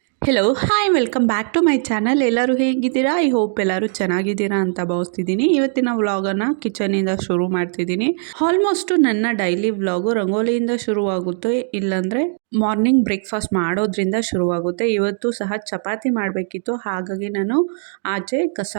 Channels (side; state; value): left; silent; 58 dB below the other